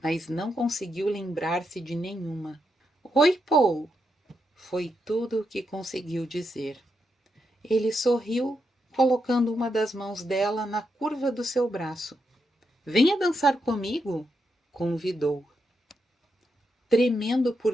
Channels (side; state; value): both; normal; correlation 0.83